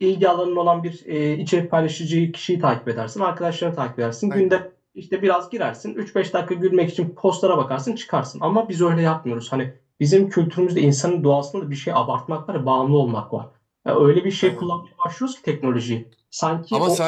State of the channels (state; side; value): identical; both; correlation 1.00